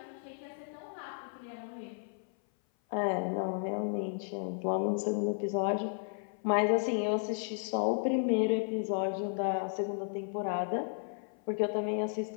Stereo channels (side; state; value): right; silent; 55 dB below the other